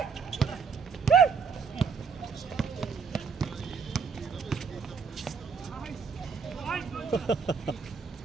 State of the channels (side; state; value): left; quieter; 5.7 dB